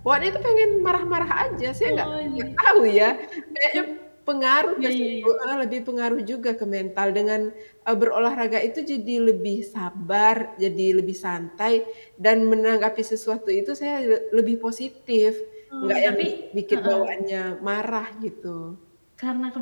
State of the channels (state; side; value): inverted; both; correlation -1.00